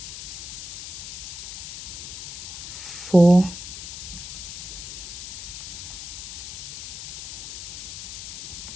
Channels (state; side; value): noise; left; hiss, 8 dB below the sound